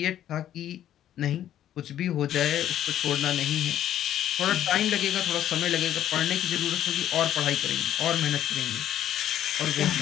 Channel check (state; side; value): quieter; right; 11.4 dB